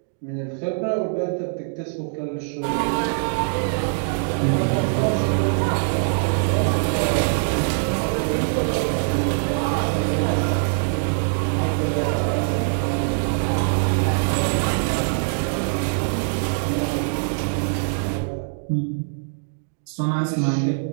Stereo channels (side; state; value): left; silent; digital silence